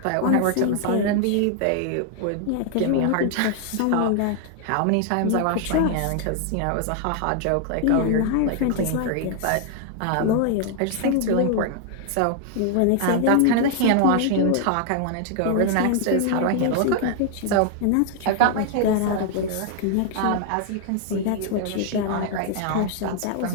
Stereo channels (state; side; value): different; both; correlation 0.00